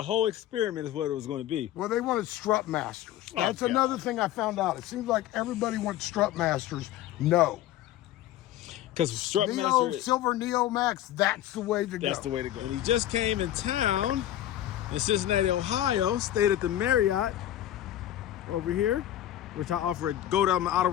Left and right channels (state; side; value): quieter; right; 12.9 dB